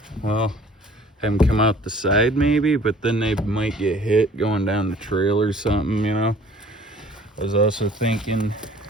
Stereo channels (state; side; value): normal; both; correlation 0.52